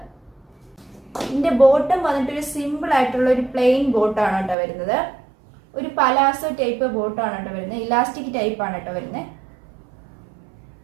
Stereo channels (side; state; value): left; drops out; at 4.5 s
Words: ഇതിന്റെ ബോട്ടം വന്നിട്ട് ഒരു സിമ്പിൾ ആയിട്ടുള്ള ഒരു പ്ലെയിൻ ബോട്ടാണ് കേട്ടോ വരുന്നത്. ഒരു പലാസോ ടൈപ്പ് ബോട്ടാണ് കേട്ടോ വരുന്നത്. ഇലാസ്റ്റിക് ടൈപ്പ് ആണ് കേട്ടോ വരുന്നത്.